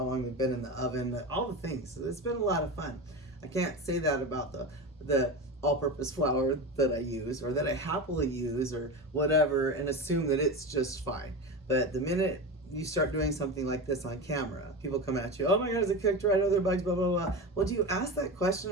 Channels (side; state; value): both; normal; correlation 0.24